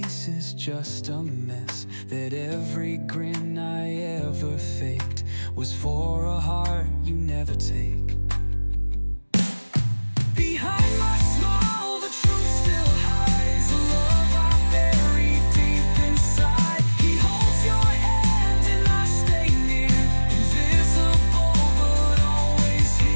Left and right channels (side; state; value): both; inverted; correlation -1.00